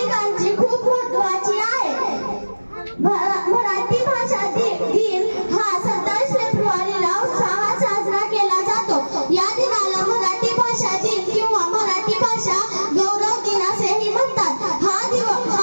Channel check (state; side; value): inverted; both; correlation -1.00